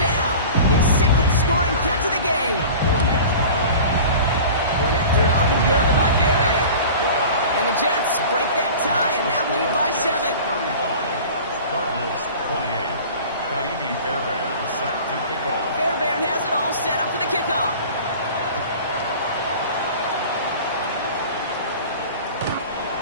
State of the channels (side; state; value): both; inverted; correlation -0.39